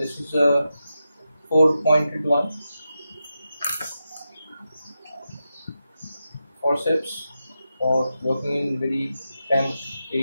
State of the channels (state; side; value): inverted; both; correlation -0.89